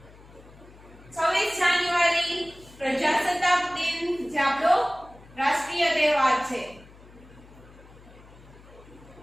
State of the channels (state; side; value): noise; left; hum, 22 dB below the sound